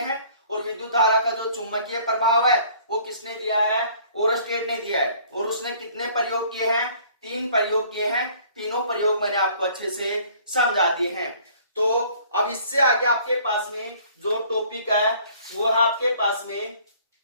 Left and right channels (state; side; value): inverted; both; correlation -0.55